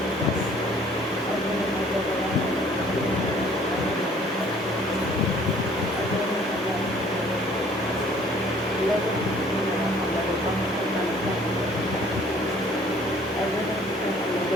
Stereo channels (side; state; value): both; normal; correlation 0.56